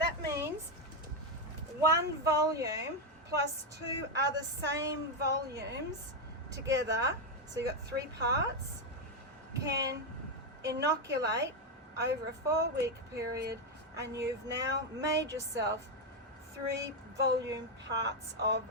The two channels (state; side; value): normal; both; correlation 0.05